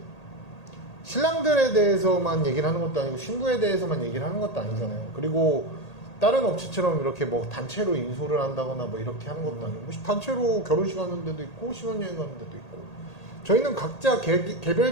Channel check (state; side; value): late; right; 1.8 ms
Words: 신랑들에 대해서만 얘기를 하는 것도 아니고 신부에 대해서만 얘기를 하는 것도 아니잖아요. 그리고 다른 업체처럼 이렇게 뭐 단체로 인솔을 한다거나 뭐 이렇게 하는 것도 아니고 뭐 단체로 결혼식 하는 데도 있고 신혼여행 가는 데도 있고 저희는 각자